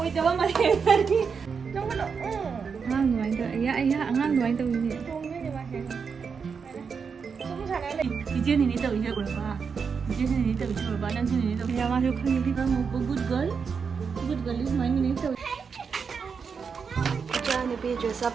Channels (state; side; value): quieter; left; 5.9 dB